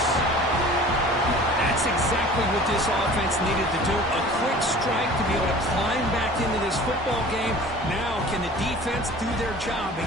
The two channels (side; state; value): both; normal; correlation 0.44